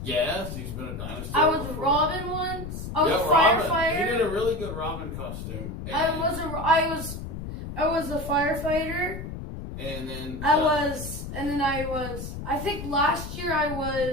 Yes, he's been a dinosaur. I was before. Robin once. I was a Robin. firefighter. He did a really good Robin costume. I was a firefighter. And then I think last year I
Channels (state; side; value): noise; left; rumble, 8 dB below the sound